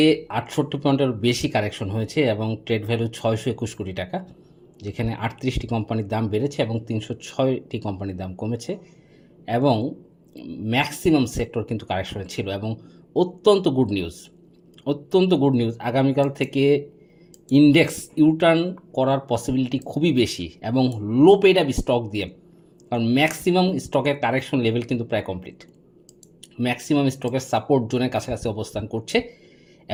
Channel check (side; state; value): both; identical; correlation 1.00